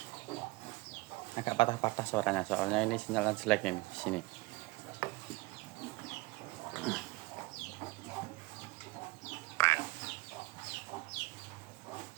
Agak patah-patah suaranya, soalnya ini sinyalnya jelek ini di sini.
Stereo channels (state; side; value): quieter; left; 22.3 dB